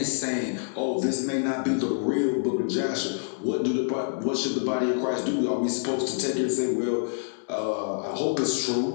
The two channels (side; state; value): right; silent; digital silence